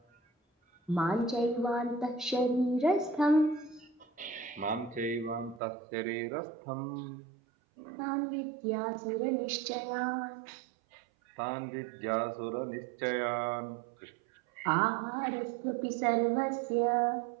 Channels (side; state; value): left; drops out; at 5.6 s